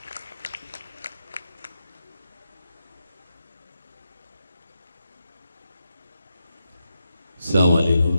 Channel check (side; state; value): both; inverted; correlation -0.87